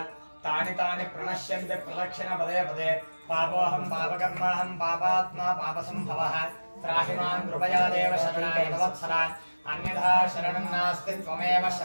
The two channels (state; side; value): inverted; both; correlation -1.00